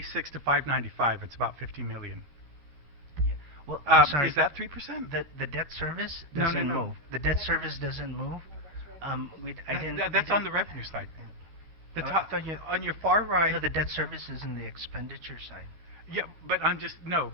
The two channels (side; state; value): left; late; 13 ms